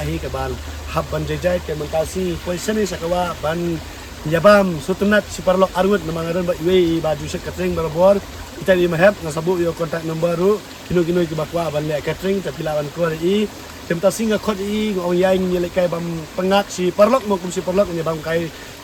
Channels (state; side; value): identical; both; correlation 1.00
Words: hi kaban hab ban Jaijai tementasi poison ni sakawa ban yabam sutunat si parlok Harud namangaran ba iwe baju set catering barabor kita di Mahep ngasabu yo kontak number ru kinu ki bakwa ban le catering tapi lawan ko i tementasi ngakot i ngong yai ngile kai bam pengat si parlok mo kum si parlok nya bam kai